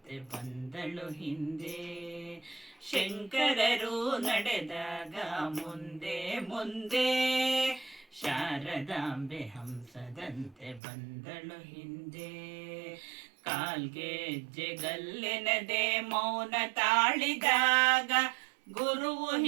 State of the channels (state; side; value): drops out; left; at 10.8 s